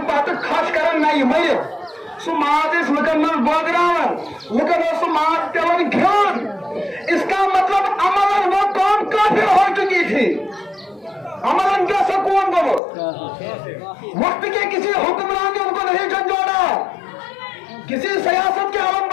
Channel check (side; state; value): right; drops out; at 12.8 s